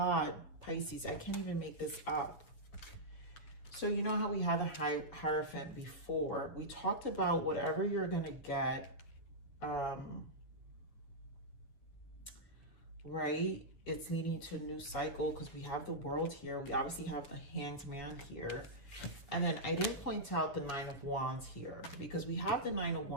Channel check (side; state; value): right; late; 7.1 ms